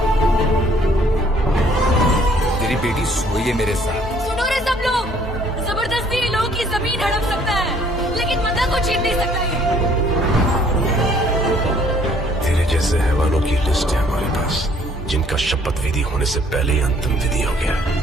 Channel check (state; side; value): normal; both; correlation 0.61